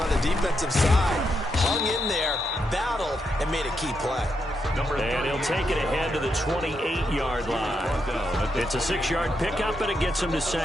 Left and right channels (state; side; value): normal; both; correlation 0.82